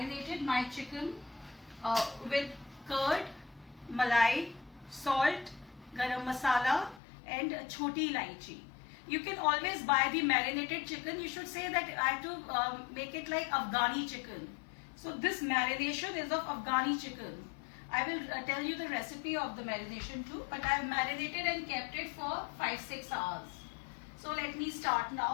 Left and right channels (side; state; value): right; drops out; at 7.0 s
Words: my chicken with curd, malai, salt, garam masala and choti ilaichi. You can always buy the marinated chicken. You should say that I have to make it like Afghani chicken. So this marination is of Afghani chicken. I will tell you the recipe of the marination too, but I have marinated and kept it for 5-6 hours. So let me start